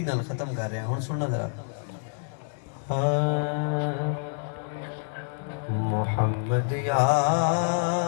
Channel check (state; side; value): silent; right; digital silence